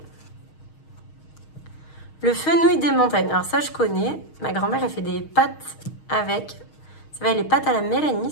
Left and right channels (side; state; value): right; late; 6.4 ms